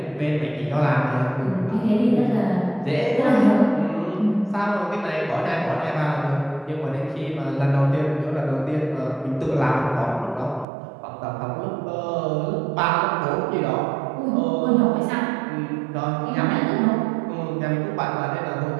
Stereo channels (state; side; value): drops out; left; at 10.7 s